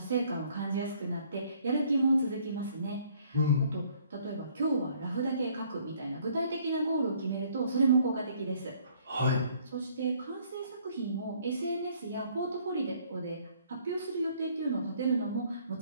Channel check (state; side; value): inverted; both; correlation -0.62